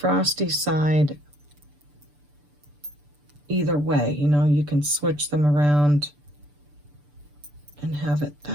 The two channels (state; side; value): late; left; 6.8 ms